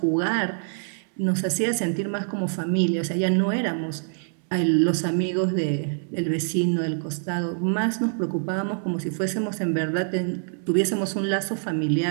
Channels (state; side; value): silent; left; 62 dB below the other